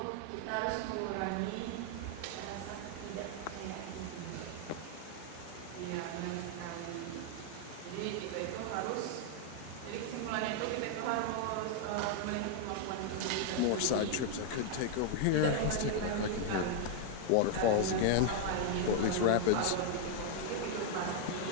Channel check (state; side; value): different; both; correlation 0.00